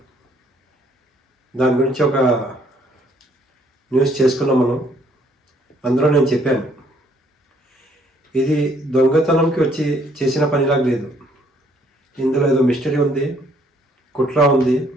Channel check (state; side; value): normal; both; correlation 0.65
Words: దాని గురించి ఒక న్యూస్ చేసుకున్నాం మనం. అందులో నేను చెప్పాను, ఇది దొంగతనంకి వచ్చి చేసిన పనిలాగా లేదు, ఇందులో ఏదో మిస్టరీ ఉంది, కుట్ర ఉంది,